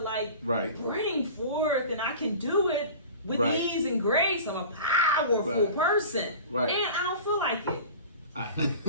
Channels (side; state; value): both; inverted; correlation -0.38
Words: Right. bring forth, and I can do it with Right. ease and grace. I'm a powerful Right. person, Right. and I don't feel like it.